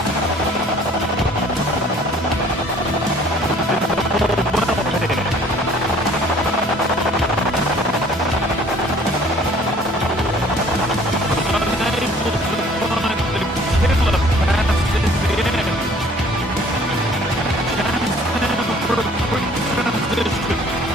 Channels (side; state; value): both; normal; correlation 0.54